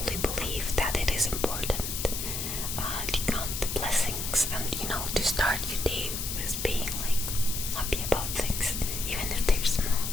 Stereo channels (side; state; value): left; noise; hiss, 4 dB below the sound